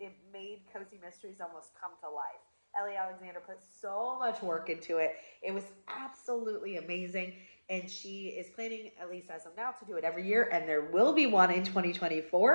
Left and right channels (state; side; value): inverted; both; correlation -1.00